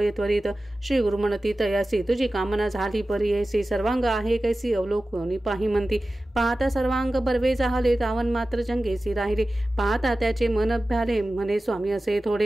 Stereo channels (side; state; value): both; normal; correlation 0.95